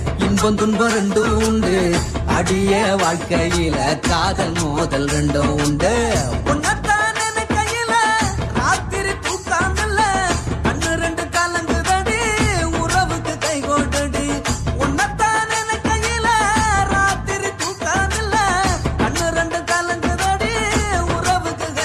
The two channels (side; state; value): both; identical; correlation 1.00